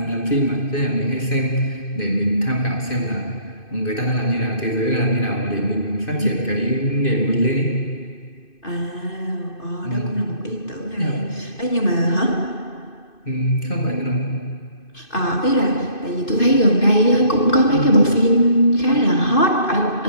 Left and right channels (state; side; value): late; right; 2.5 ms